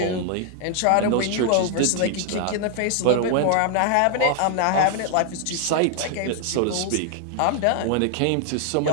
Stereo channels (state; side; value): different; both; correlation 0.00